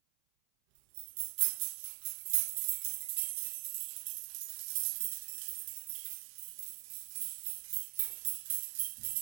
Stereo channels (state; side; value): silent; left; 50 dB below the other